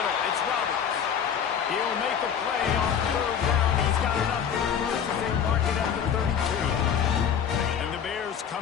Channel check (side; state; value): right; quieter; 8.1 dB